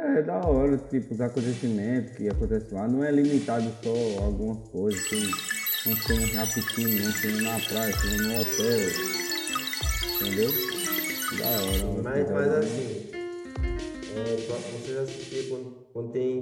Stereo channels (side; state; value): both; identical; correlation 1.00